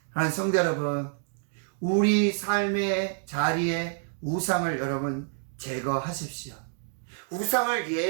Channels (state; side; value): silent; left; 59 dB below the other